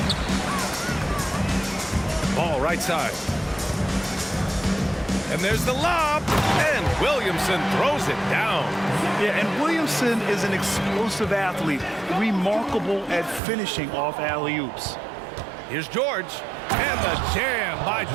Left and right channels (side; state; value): left; drops out; at 13.4 s